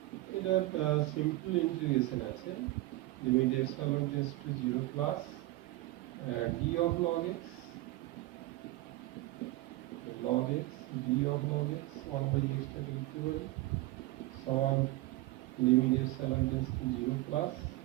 এটা সিম্পল ইন্টিগ্রেশন আছে, limit epsilon tends to 0 plus d of log x d of log x 1 by x টাকে লিখতে পারি সমান limit epsilon tends to 0 plus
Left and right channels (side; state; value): left; quieter; 18.0 dB